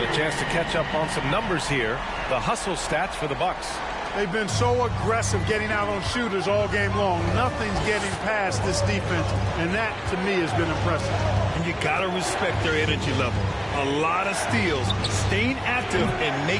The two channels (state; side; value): identical; both; correlation 1.00